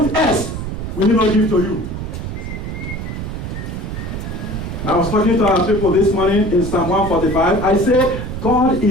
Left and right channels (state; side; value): noise; right; rumble, 6 dB below the sound